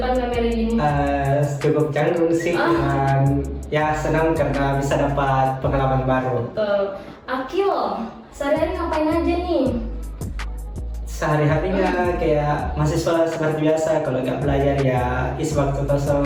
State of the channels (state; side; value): identical; both; correlation 1.00